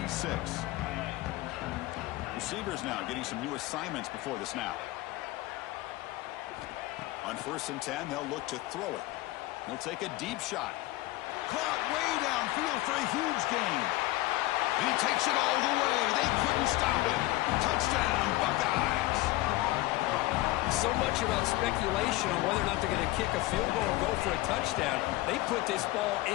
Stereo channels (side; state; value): right; quieter; 18.3 dB